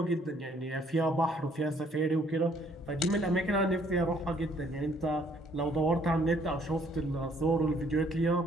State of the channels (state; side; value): normal; both; correlation 0.63